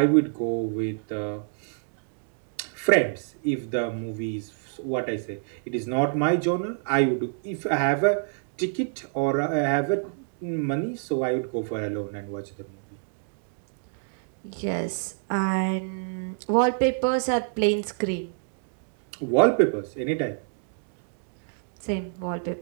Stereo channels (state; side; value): silent; left; digital silence